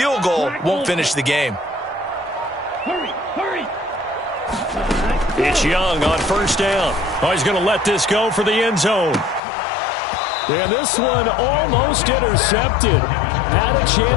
goal won't finish the game. Hurry, hurry. It's Young on first down. Oh, he's going to let this go for the end zone. And this one almost intercepted. Had a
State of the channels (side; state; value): right; drops out; at 9.4 s